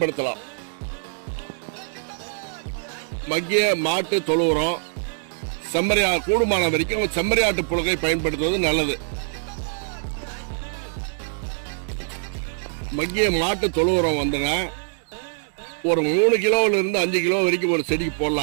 மக்கிய மாட்டு தொழு உரம், கூடுமான வரைக்கும் செம்மறியாட்டு புழுகை பயன்படுத்துவது நல்லது. மக்கிய மாட்டு தொழு உரம் ஒரு 3 கிலோல இருந்து 5 கிலோ வரைக்கும் ஒரு செடிக்கு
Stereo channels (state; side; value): silent; left; digital silence